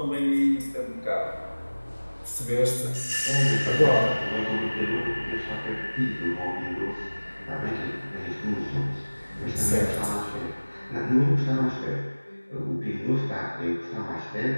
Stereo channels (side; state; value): both; inverted; correlation -1.00